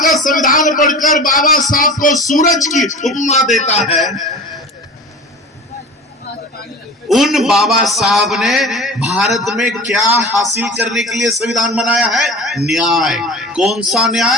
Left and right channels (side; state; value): both; normal; correlation 0.36